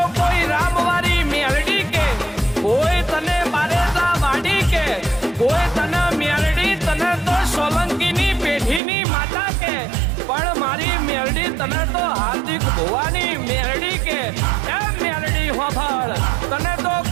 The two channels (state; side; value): drops out; left; at 8.8 s